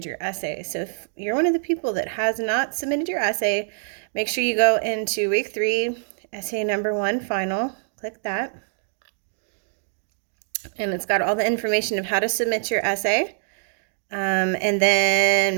your essay. So if you're one of the people that has not submitted your essay, make sure you go into week 3, essay number 1 final. Click that. And it's got all the information of how to submit your essay. And then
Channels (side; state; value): left; silent; digital silence